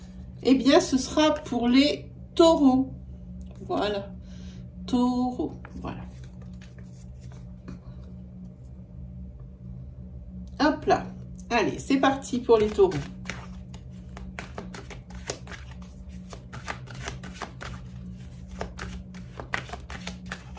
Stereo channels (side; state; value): both; identical; correlation 1.00